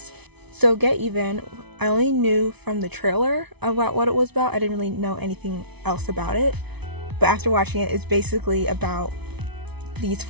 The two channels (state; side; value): late; left; 0.99 ms